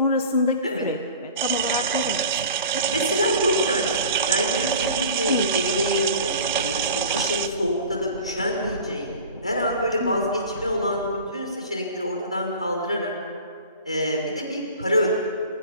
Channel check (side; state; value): both; inverted; correlation -0.41